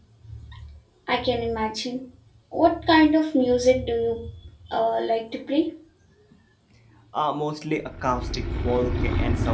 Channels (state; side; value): identical; both; correlation 1.00